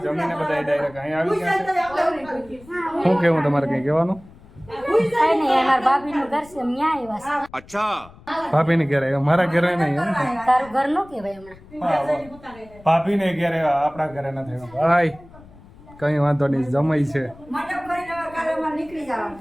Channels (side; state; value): left; noise; rumble, 22 dB below the sound